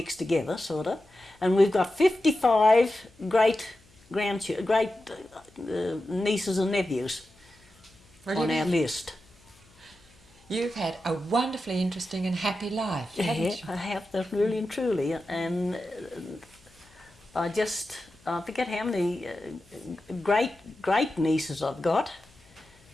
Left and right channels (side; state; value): left; noise; hum, 29 dB below the sound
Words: together, sort of, and we've got 55 great nieces and nephews on our list. You've had a wonderfully interesting and happy life, haven't you? I have, that really and truly, and I forget how many great nieces I've got.